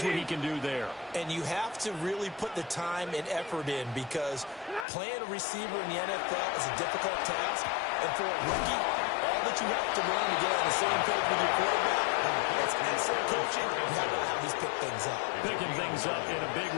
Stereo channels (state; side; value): drops out; right; at 4.9 s